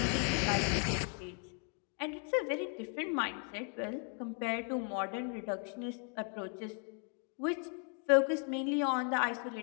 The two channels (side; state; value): right; quieter; 39.0 dB